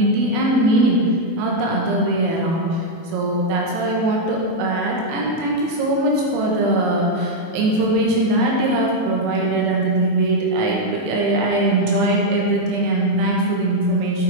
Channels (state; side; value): late; left; 18 ms